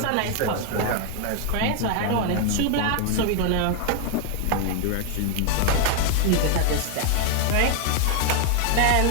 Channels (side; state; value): both; different; correlation 0.01